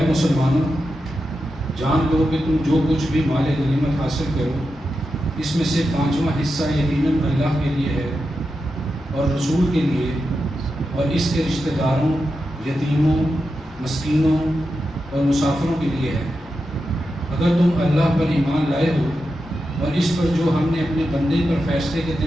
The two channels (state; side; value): normal; both; correlation 0.89